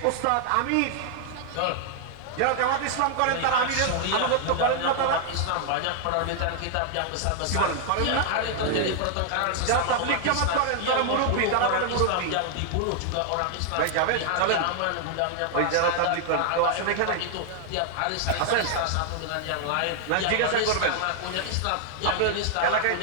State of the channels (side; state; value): both; different; correlation 0.00